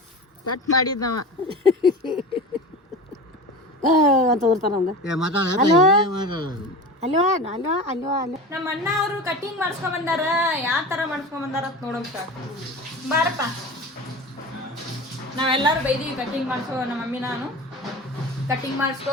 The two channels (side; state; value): both; normal; correlation 0.31